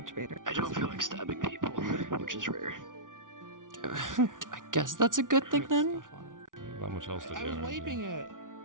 baiter. I don't feel like stabbing people, which is rare. I guess that's a good thing then. Stuff on it. There's not much else to do. I was is there? wiping it.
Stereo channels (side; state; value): left; late; 0.88 ms